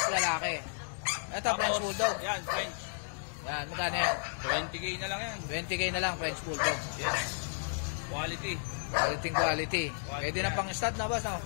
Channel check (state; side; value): silent; right; digital silence